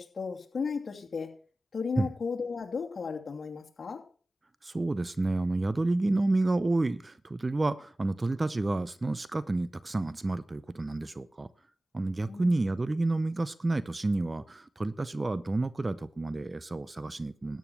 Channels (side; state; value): both; normal; correlation 0.97